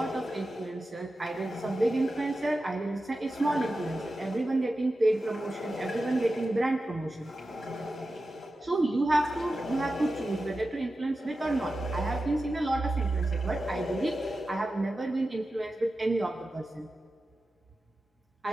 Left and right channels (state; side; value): normal; both; correlation 0.92